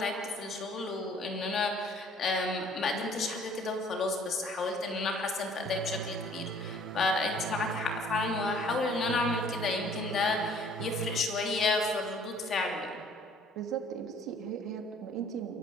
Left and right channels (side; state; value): both; normal; correlation 0.55